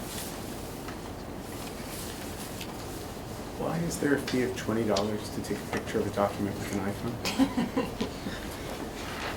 Why is there a fee of $20 to take a picture of a document with an iPhone?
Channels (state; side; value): identical; both; correlation 1.00